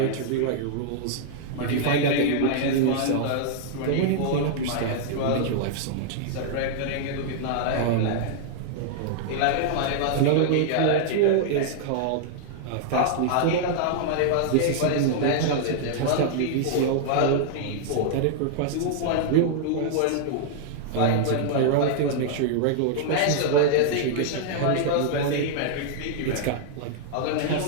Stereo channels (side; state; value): both; different; correlation -0.01